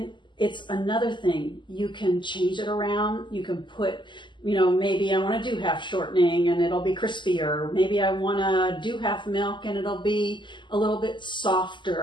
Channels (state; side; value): late; right; 0.23 ms